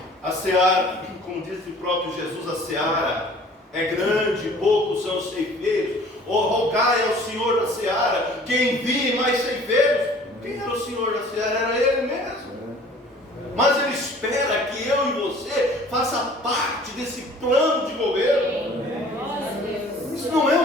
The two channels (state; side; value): normal; both; correlation 0.50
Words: A seara, como disse o próprio Jesus, a seara é grande, poucos são os ceifeiros. Rogai ao Senhor da seara que envie mais ceifeiros. Quem era o Senhor da seara? Era Ele mesmo. Mas Ele espera que eu e você faça parte desse plano de governo. Isso não é